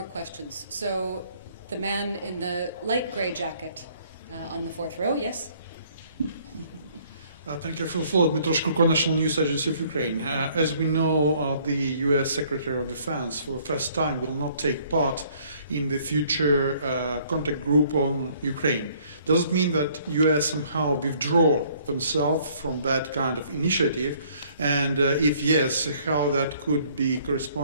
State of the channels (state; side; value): inverted; both; correlation -0.61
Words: questions. So the man in the light gray jacket on the 4th row, yes? Thank you for the floor. Dmytro Shkurko, National News Agency of Ukraine. As we know, the U.S. Secretary of Defense, for the first time, will not take part in the future contact group on Ukraine. Does it mean that US somehow withdraw themselves from that kind of initiative? And if yes, how that could be